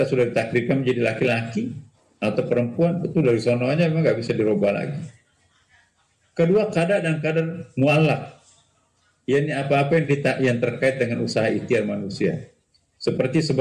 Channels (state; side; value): identical; both; correlation 1.00